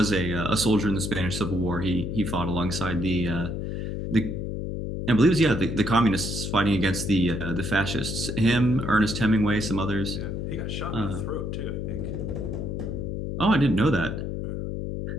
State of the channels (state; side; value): noise; left; hum, 4 dB below the sound